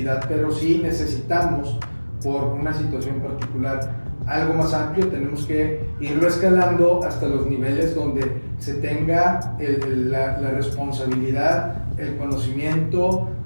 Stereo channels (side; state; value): both; inverted; correlation -1.00